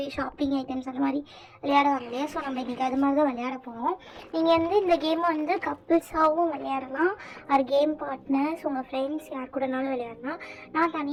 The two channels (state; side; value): identical; both; correlation 1.00